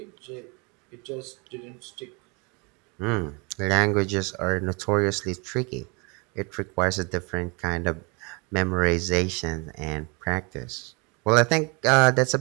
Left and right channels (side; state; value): left; quieter; 30.5 dB